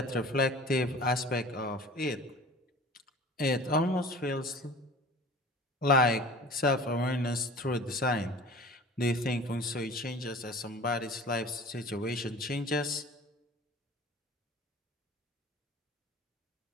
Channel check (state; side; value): normal; both; correlation 0.42